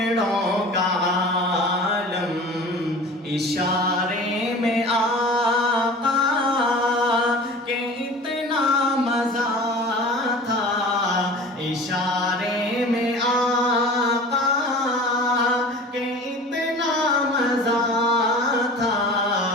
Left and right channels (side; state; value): both; normal; correlation 0.39